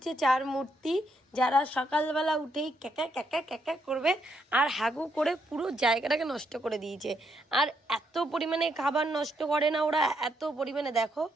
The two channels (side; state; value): both; normal; correlation 0.76